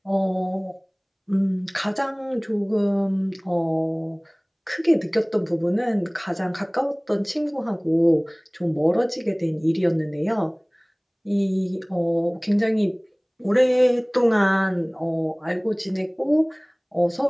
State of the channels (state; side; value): identical; both; correlation 1.00